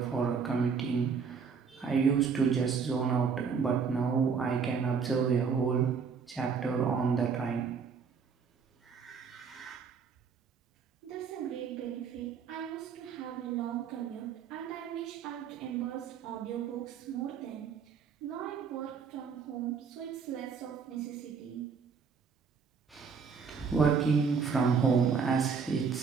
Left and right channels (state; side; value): quieter; left; 6.0 dB